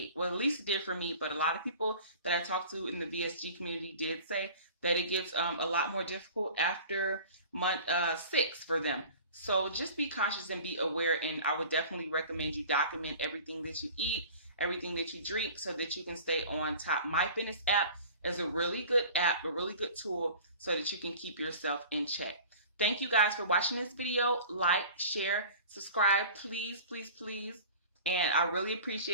Well, at least it did for me, but a lot of people that I talked to in the VSG community did say that it gets a lot more difficult after month 6 for them. So just be conscious and be aware, and I would definitely recommend you document everything that you eat, everything that you drink, so that you can stay on top. My Fitness app is a really good app, a really good tool, so that you can keep yourself in check. Thank you guys for watching this video. Like, share, subscribe, please, please, please. And I really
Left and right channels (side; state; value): both; inverted; correlation -0.42